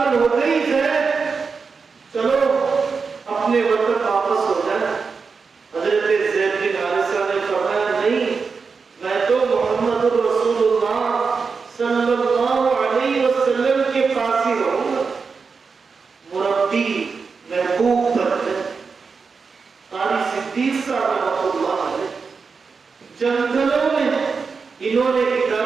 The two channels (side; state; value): left; quieter; 5.1 dB